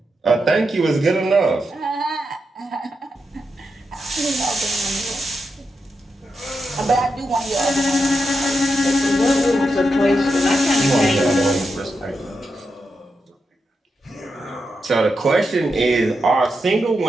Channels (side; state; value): both; normal; correlation 0.86